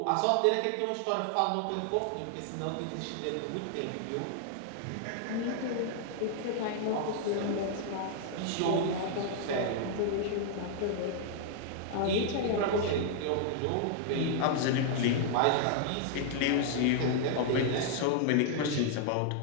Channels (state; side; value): different; both; correlation 0.00